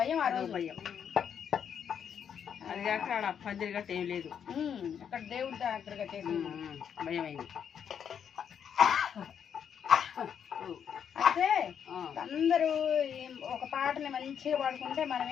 ఆ రోజు భయం. అది కాక అక్కడ పందిరి గట్ట ఏం లేదు. అక్కడ దేవుడి దగ్గరగా చేసి భయం అయింది. అయితే అందరూ ఒక పాటని మంచిగా పాడుకుంటే మనం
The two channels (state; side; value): quieter; right; 8.0 dB